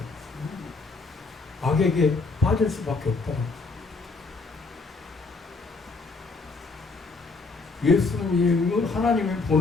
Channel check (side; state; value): right; quieter; 3.9 dB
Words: 악에게 빠질 수밖에 없다. 예수님을 하나님이